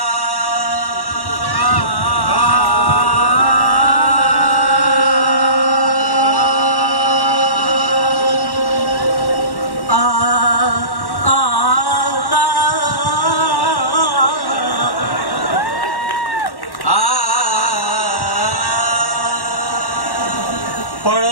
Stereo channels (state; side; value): late; right; 1.1 ms